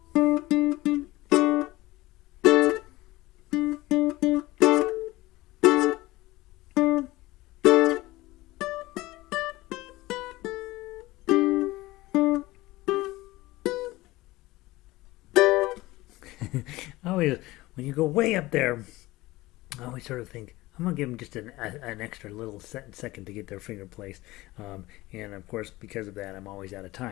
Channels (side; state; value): right; quieter; 19.2 dB